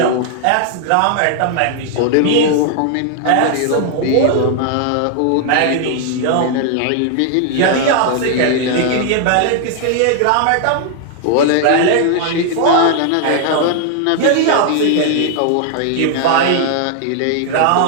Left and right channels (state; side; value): different; both; correlation 0.00